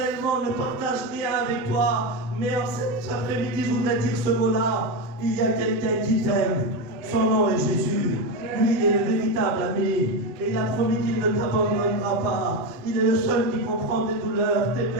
ne partage rien avec toi. Mais en cet après-midi, je voudrais dire ce mot-là. Il y a quelqu'un qui t'aime. Son nom est Jésus. Lui, il est le véritable ami. Et il a promis qu'il ne t'abandonnera pas. Il est le seul qui comprend tes douleurs, tes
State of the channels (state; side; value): late; left; 7.8 ms